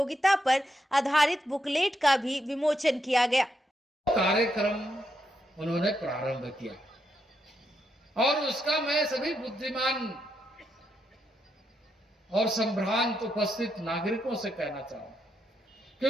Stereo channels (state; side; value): normal; both; correlation 0.81